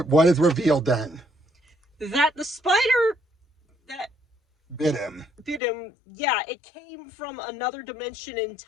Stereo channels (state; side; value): drops out; right; at 5.6 s